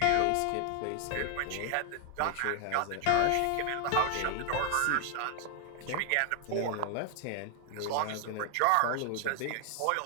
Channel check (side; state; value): both; different; correlation 0.00